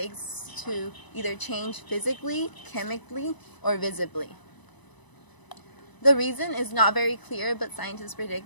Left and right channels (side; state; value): right; late; 1.0 ms